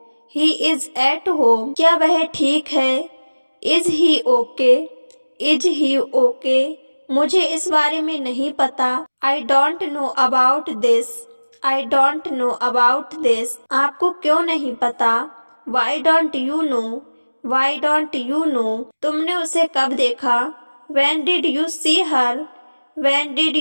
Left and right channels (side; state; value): both; inverted; correlation -1.00